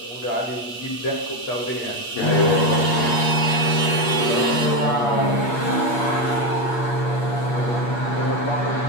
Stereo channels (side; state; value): right; late; 8.4 ms